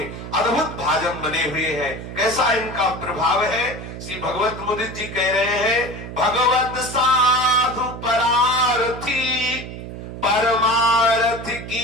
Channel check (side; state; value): right; noise; hum, 10 dB below the sound